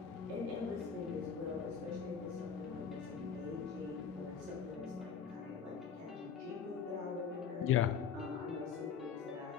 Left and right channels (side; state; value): right; quieter; 6.8 dB